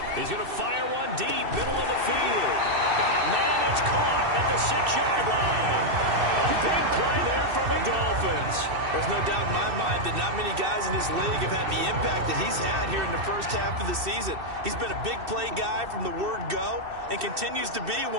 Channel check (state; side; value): late; left; 2.6 ms